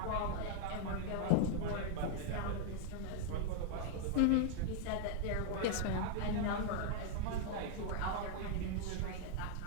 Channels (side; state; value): both; different; correlation 0.00